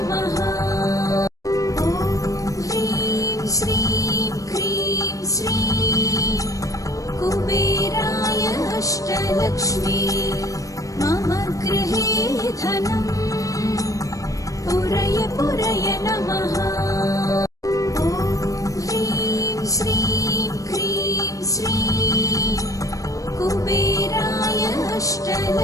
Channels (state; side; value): late; right; 0.16 ms